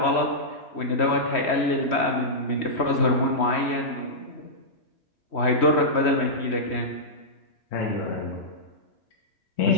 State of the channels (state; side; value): late; right; 3.1 ms